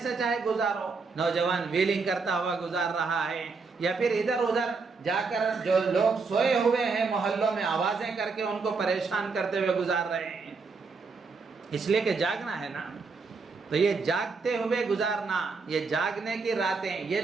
چاہے گزارو۔ نوجوان ویلنگ کرتا ہوا گزار رہا ہے یا پھر ادھر ادھر جا کر جو لوگ سوئے ہوئے ہیں محلوں میں آوازیں کر کے ان کو پریشان کرتے ہوئے گزار رہے ہیں، اس لیے کہ جاگنا ہے نا۔ تو یہ جاگتے ہوئے گزارنا، یہ جاگنے کی راتیں، یہ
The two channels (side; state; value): left; quieter; 4.5 dB